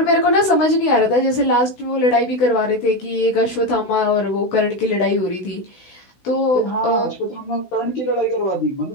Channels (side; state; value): right; late; 16 ms